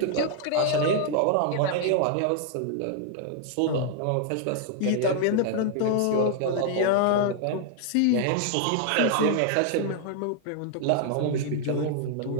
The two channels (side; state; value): both; different; correlation 0.00